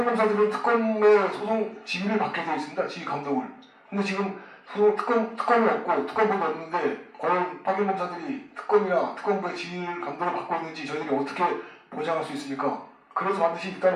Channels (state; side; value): identical; both; correlation 1.00